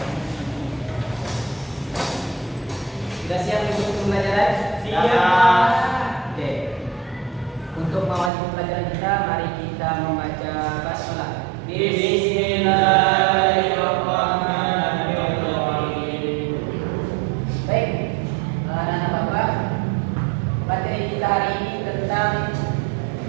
Sudah siap untuk pembelajaran? Siap. Oke. Untuk mengawali pembelajaran kita, mari kita membaca basmalah. Bismillahirrahmanirrahim. Baik, anak-anak bapak, materi kita hari ini tentang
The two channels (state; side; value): drops out; left; at 8.3 s